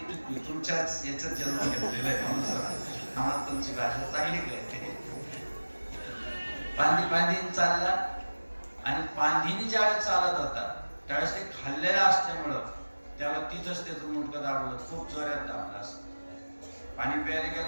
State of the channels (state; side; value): inverted; both; correlation -1.00